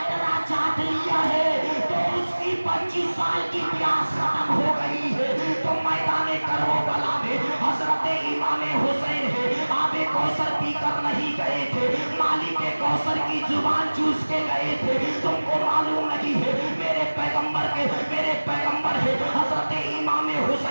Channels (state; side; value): inverted; both; correlation -1.00